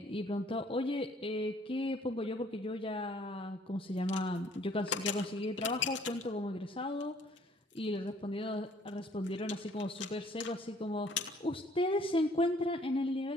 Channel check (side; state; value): both; normal; correlation 0.59